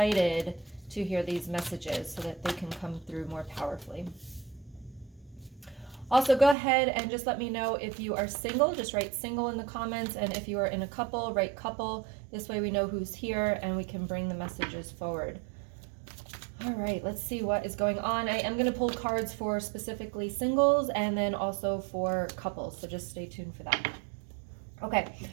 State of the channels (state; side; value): drops out; left; at 6.6 s